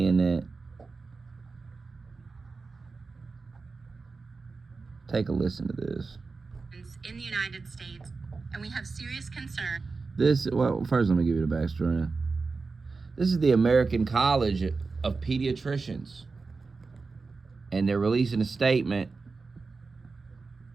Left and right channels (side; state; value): left; quieter; 4.2 dB